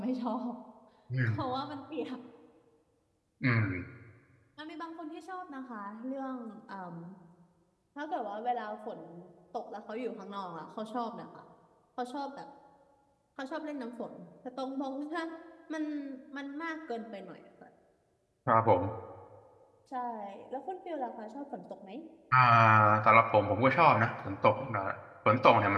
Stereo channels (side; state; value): both; identical; correlation 1.00